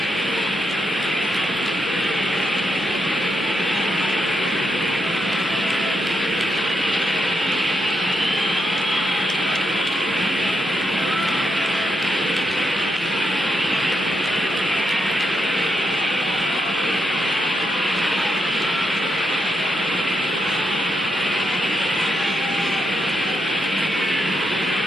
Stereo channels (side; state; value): both; normal; correlation 0.82